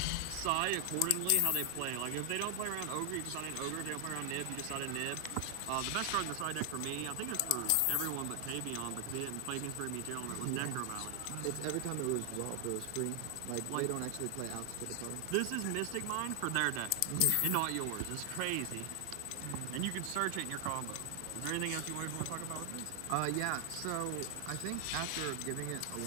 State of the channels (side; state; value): both; different; correlation 0.00